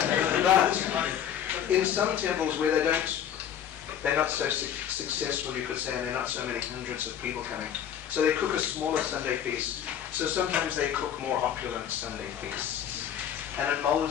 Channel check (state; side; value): quieter; right; 9.4 dB